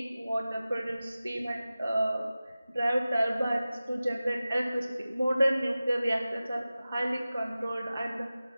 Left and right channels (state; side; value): inverted; both; correlation -0.96